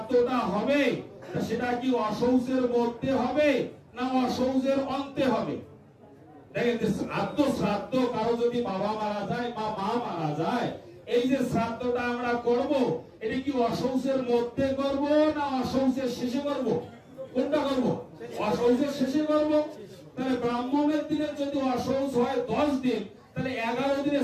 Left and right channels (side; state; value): both; identical; correlation 1.00